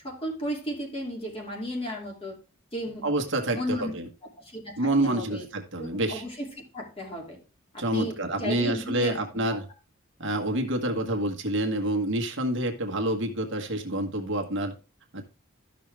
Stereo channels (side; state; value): both; normal; correlation 0.21